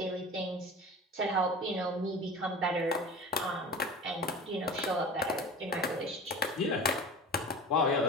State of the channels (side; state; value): both; normal; correlation 0.35